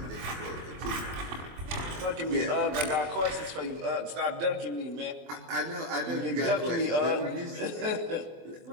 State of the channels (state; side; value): late; left; 24 ms